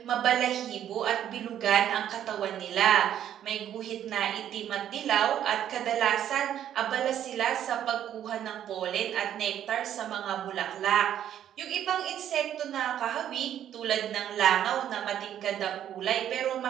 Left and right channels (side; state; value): left; quieter; 10.6 dB